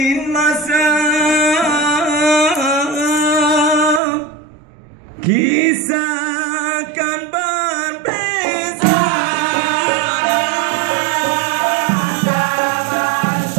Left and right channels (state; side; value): drops out; left; at 4.0 s